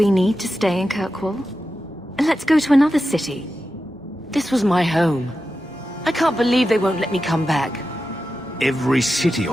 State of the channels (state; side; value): normal; both; correlation 0.91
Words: need to stay in Kirkwall? Let's go to another city. This was my home. I can't believe they won't let me come back. Every city